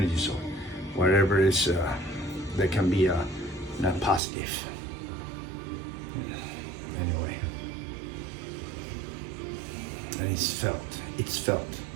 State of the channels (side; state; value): left; drops out; at 4.2 s